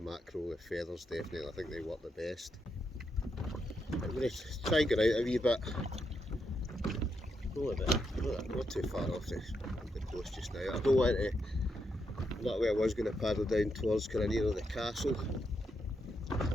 the feathers definitely, I think they work the best. I'm going to try and get out a wee bit. Go a bit, not too far off the coast just now. I don't want to, that way I was going to paddle down towards kind of near the castle,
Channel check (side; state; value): both; normal; correlation 0.81